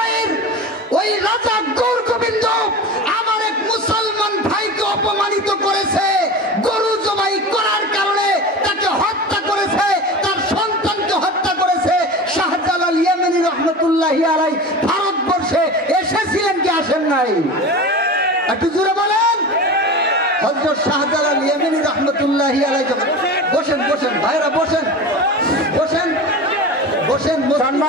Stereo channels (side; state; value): both; normal; correlation 0.31